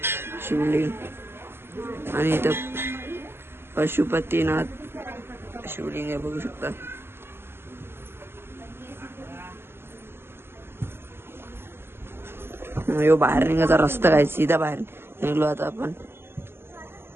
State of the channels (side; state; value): left; late; 0.11 ms